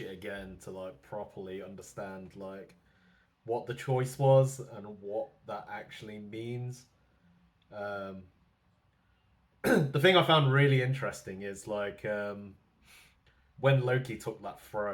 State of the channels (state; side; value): identical; both; correlation 1.00